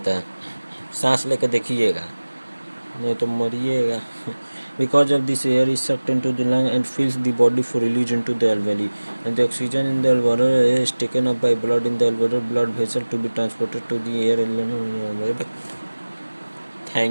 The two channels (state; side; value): inverted; both; correlation -1.00